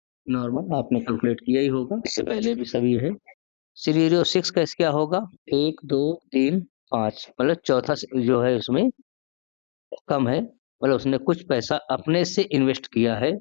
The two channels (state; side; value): silent; right; digital silence